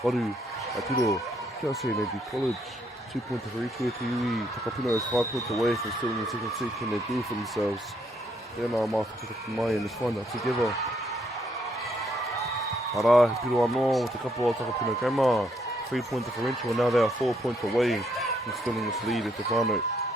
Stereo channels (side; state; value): both; normal; correlation 0.72